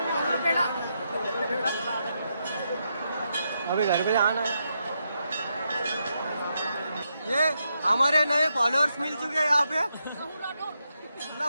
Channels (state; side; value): inverted; both; correlation -0.82